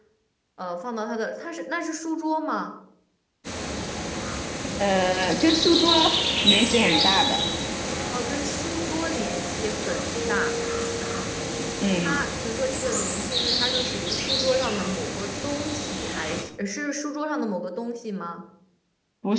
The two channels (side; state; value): both; identical; correlation 1.00